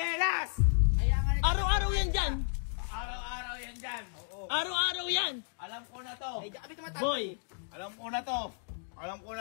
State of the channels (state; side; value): silent; right; digital silence